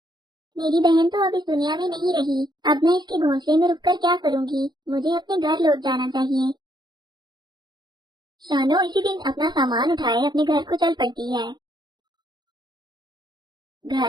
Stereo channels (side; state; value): left; late; 0.21 ms